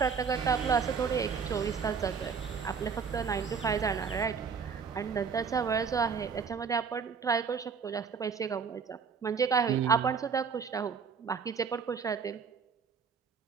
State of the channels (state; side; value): quieter; left; 6.0 dB